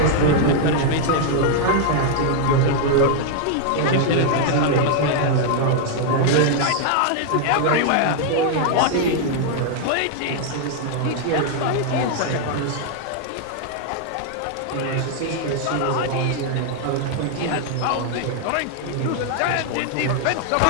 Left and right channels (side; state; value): both; different; correlation 0.00